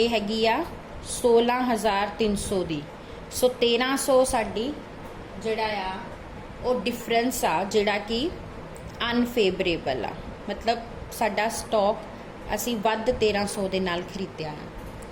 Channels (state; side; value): identical; both; correlation 1.00